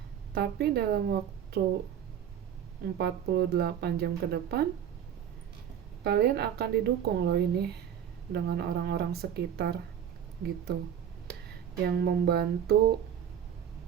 tapi dalam waktu 48 jam ke depan kalian akan didukung loh ini dengan orang-orang sekitar gitu, yang membantu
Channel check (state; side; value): quieter; left; 9.1 dB